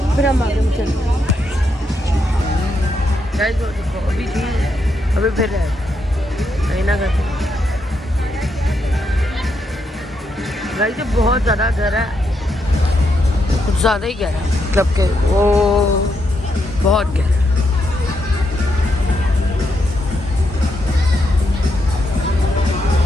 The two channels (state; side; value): normal; both; correlation 0.80